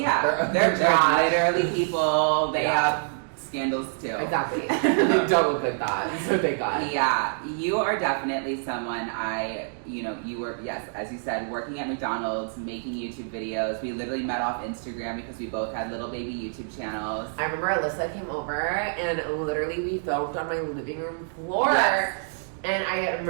they're literally people. They have scandals too. Exactly. They don't look like that, so thank God. Yeah, you are definitely someone you were, yes, as you said, working at McDonald's, making YouTube videos. We literally met off Instagram because we both had little baby YouTube channels. I remember Elissa came over, and literally we filmed on my living room floor. Yes. And I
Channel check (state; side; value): silent; left; digital silence